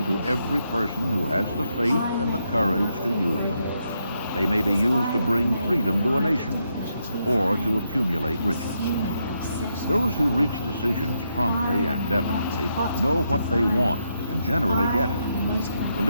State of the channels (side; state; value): both; inverted; correlation -0.80